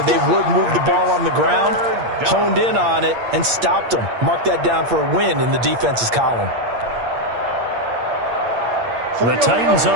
they would move the ball on the ground, honed in on it, and stopped them. Mark that down for a win in the defense's column. The Titans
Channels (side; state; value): left; late; 8.6 ms